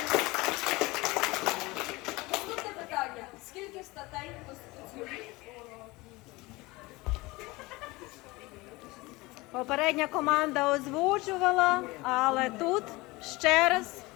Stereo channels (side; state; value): right; quieter; 22.2 dB